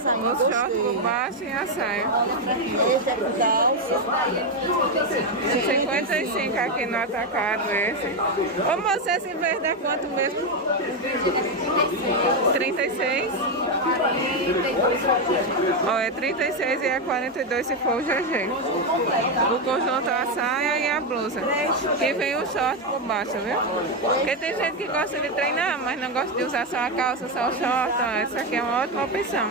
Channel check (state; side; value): normal; both; correlation 0.07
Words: O short por baixo e a saia. Olha pra aqui, esse é por calça. 55 aqui no atacado esse. Ô moça, esse verde é quanto mesmo? 36? Ó, é 36 e é 42 se for o GG. O conjunto, a saia e a blusa. Que vem o short por baixo, viu? Porque tem gente que gosta de treinar, mas não gosta de usar só a calça, só o short. Ó, essa aqui é uma ótima opção.